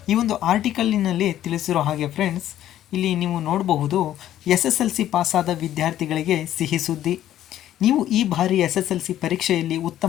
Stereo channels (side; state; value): right; quieter; 12.2 dB